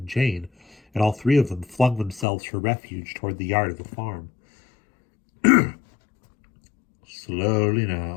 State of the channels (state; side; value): drops out; right; at 2.2 s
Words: Jane, and all three of them flung themselves for refuge toward the yard of the farm. "Slowly